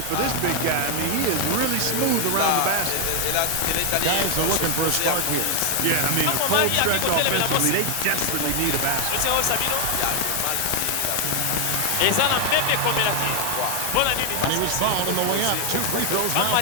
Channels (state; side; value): different; both; correlation 0.00